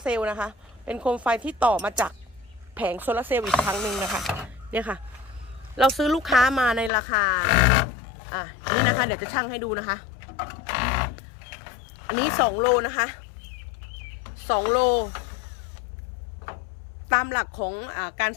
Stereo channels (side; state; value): right; drops out; at 6.9 s